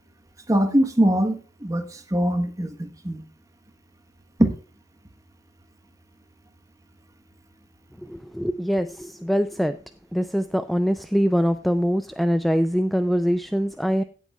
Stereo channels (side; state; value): both; normal; correlation 0.95